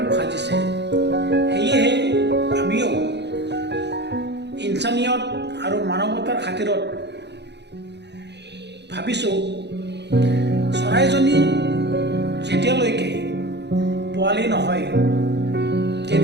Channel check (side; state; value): left; late; 0.50 ms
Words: সাজিছে। সেয়েহে আমিও ইনচানিয়ত আৰু মানৱতাৰ খাতিৰত ভাবিছোঁ, চৰাইজনী যেতিয়ালৈকে পোৱালি নহয়